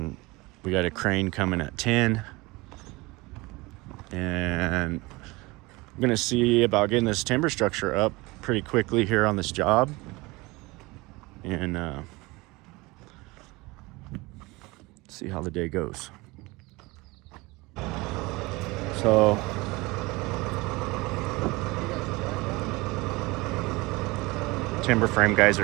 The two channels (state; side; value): quieter; left; 23.0 dB